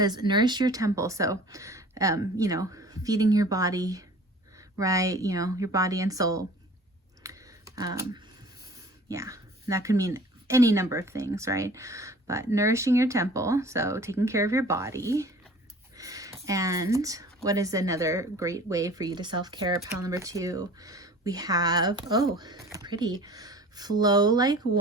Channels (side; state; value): both; normal; correlation 0.45